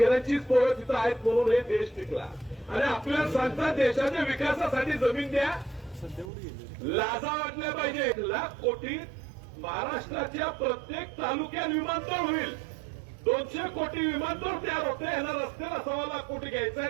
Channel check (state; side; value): drops out; left; at 6.3 s